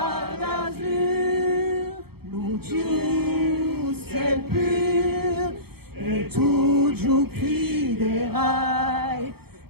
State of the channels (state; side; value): late; left; 0.96 ms